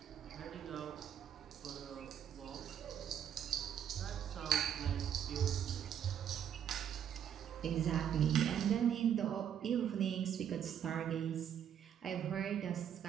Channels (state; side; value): quieter; left; 9.2 dB